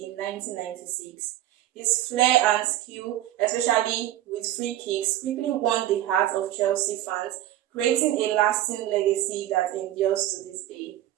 in 1996. His flair and skill, especially with free kicks, quickly won the hearts of Chelsea fans, creating a lasting legacy that endures to this day.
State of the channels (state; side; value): quieter; left; 13.5 dB